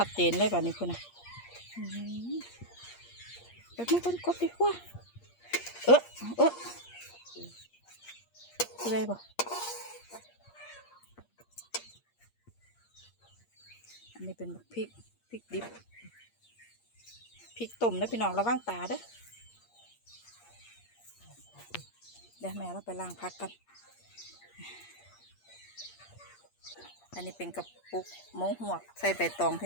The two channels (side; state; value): right; late; 8.5 ms